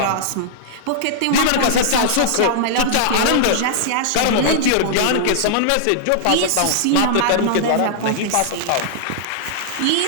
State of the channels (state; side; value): different; both; correlation -0.01